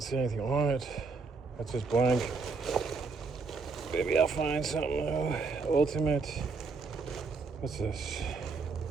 see anything on it. That's just blank. Maybe I'll find something though. Ultimate. What's this?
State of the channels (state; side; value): quieter; left; 4.5 dB